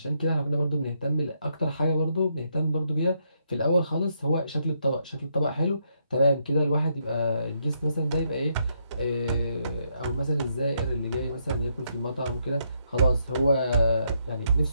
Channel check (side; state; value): both; inverted; correlation -0.76